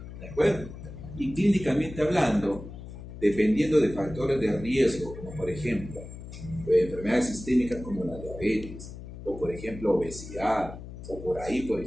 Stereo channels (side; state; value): left; noise; hum, 12 dB below the sound